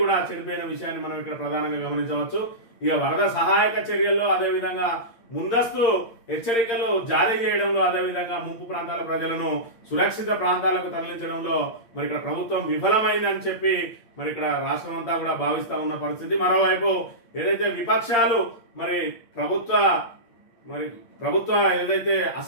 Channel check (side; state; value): right; late; 8.7 ms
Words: కూడా చెడిపోయిన విషయాన్ని మనం ఇక్కడ ప్రధానంగా గమనించవచ్చు. ఇక వరద సహాయక చర్యల్లో అదేవిధంగా ముందస్తు హెచ్చరికలు జారీ చేయడంలో అదేవిధంగా ముంపు ప్రాంతాల ప్రజలను సురక్షిత ప్రాంతాలకు తరలించడంలో ఇక్కడ ప్రభుత్వం విఫలమైందని చెప్పి ఇక్కడ రాష్ట్రం అంతా కూడా భావిస్తా ఉన్న పరిస్థితి. మరోవైపు ఏదైతే విపక్షాలు ప్రభుత్వ ఏదైతే